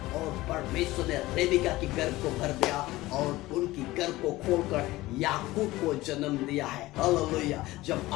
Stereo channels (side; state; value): right; quieter; 18.3 dB